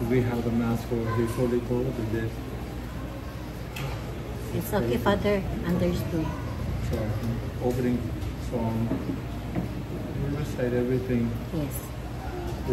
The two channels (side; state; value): both; identical; correlation 1.00